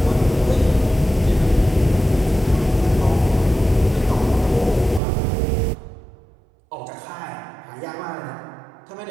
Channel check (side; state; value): left; drops out; at 5.0 s